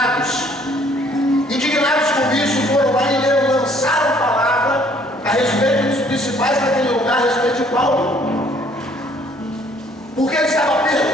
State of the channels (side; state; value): both; normal; correlation 0.61